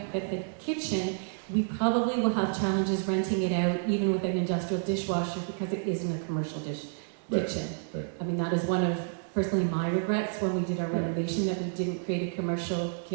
that the kitchen, we probably will have challenges renting it out even with an industrial dishwasher because it isn't a commercial kitchen. Right. I mean, that is one of, personally, my regrets when we did our Yeah. renovation, that we didn't create a commercial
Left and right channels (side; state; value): left; silent; digital silence